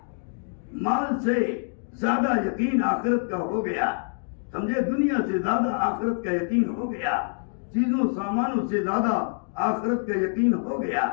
مال سے زیادہ یقین آخرت کا ہو گیا. سمجھے؟ دنیا سے زیادہ آخرت کا یقین ہو گیا. چیزوں سامانوں سے زیادہ آخرت کا یقین ہو گیا.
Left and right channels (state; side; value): silent; right; 61 dB below the other